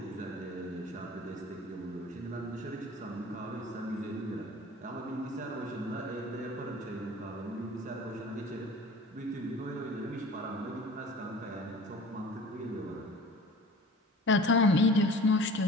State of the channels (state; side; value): normal; both; correlation 0.42